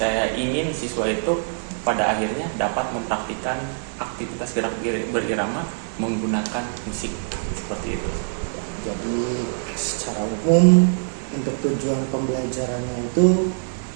ingin siswa itu pada akhirnya dapat mempraktikkan aktivitas gerak berirama menggunakan musik seperti itu. Jadi secara umum untuk tujuan pembelajarannya itu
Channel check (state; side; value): silent; left; 63 dB below the other